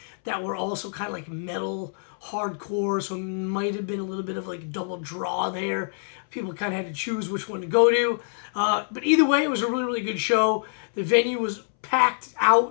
that were also kind of like metal, hardcore, so it might have been a little bit of like double draw there. People kind of had to choose which one to go to. But either way, it was a really good show. The venue was packed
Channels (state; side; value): silent; right; 61 dB below the other